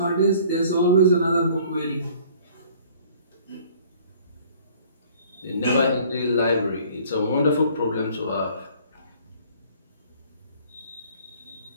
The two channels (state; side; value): inverted; both; correlation -0.54